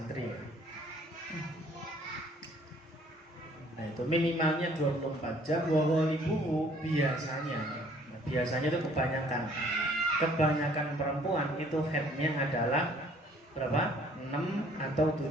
Nah itu minimalnya 24 jam. Wawalibu biasanya itu kebanyakan perempuan itu headnya adalah berapa? 6 atau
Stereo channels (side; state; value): both; normal; correlation 0.59